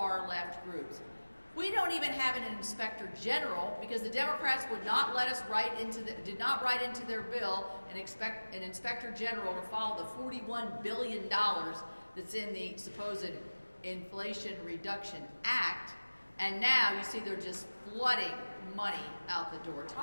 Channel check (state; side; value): inverted; both; correlation -1.00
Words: left groups. We don't even have an inspector general because the Democrats would not let us did not write into their bill and expect an inspector general to follow the $41 billion that's in the supposed Inflation Reduction Act. And now you see they're just flooding money out the door.